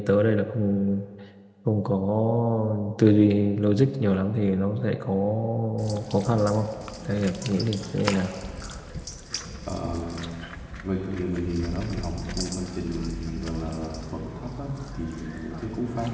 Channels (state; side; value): identical; both; correlation 1.00